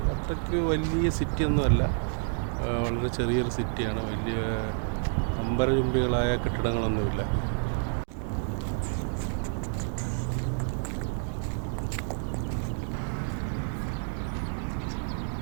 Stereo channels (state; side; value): silent; left; 59 dB below the other